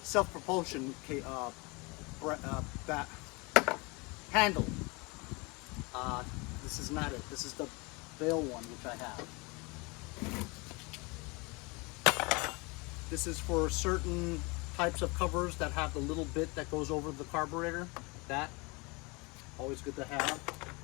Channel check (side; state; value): right; quieter; 27.4 dB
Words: self-propulsion handle. This is not it. This is the bail one, which I have. This is for certain types of covers that have the little bit that goes over the carburetor. That, always good to have.